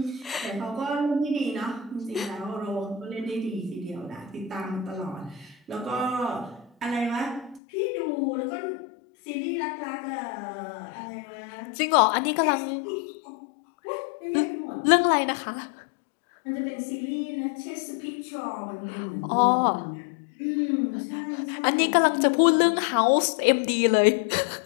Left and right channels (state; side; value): drops out; right; at 7.6 s